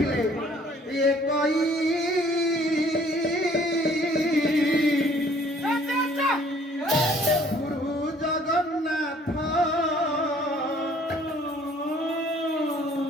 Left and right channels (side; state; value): both; normal; correlation 0.58